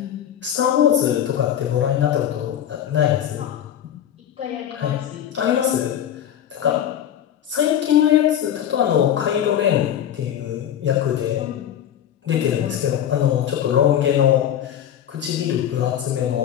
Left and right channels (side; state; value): right; quieter; 10.1 dB